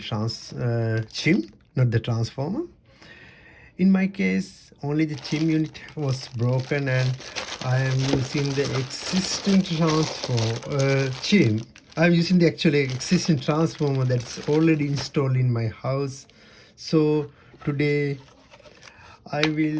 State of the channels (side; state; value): both; identical; correlation 1.00